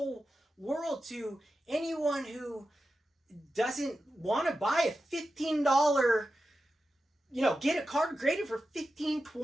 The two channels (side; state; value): both; normal; correlation 0.91